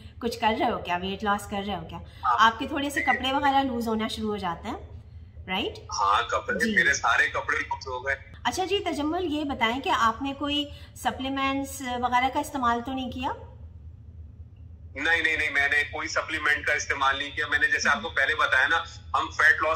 कुछ कर रहे हो क्या, वेट लॉस कर रहे हो क्या, आपके थोड़े से कपड़े वगैरह लूज होना शुरू हो जाते हैं, राइट? हाँ, कपड़े, मेरे सारे कपड़े लूज हो गए। अच्छा जी तजम्मुल, ये बताएं कि आपने कोई सप्लीमेंट्स वगैरह का इस्तेमाल तो नहीं किया? नहीं, मैंने कोई सप्लीमेंट का इस्तेमाल नहीं किया। मैंने जैसे आपको पहले बताया ना, हम फैट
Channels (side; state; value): both; identical; correlation 1.00